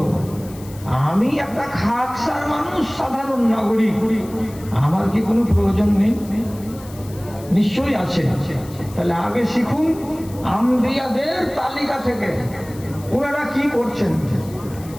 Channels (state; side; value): noise; left; hiss, 20 dB below the sound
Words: আমি একটা খাকসার মানুষ, সাধারণ নাগরিক, আমার কি কোনো প্রয়োজন নেই? নিশ্চয়ই আছে। তাহলে আগে শিখুন আম্বিয়াদের তালিকা থেকে ওনারা কি করছেন।